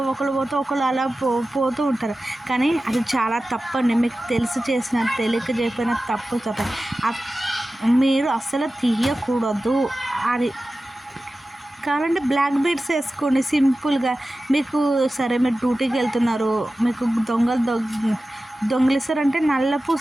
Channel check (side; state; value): both; normal; correlation 0.95